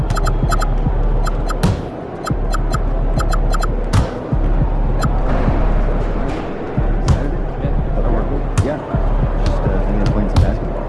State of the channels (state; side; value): identical; both; correlation 1.00